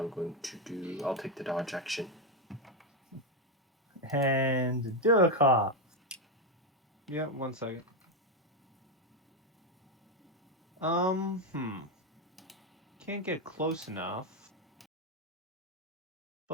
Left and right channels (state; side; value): normal; both; correlation 0.06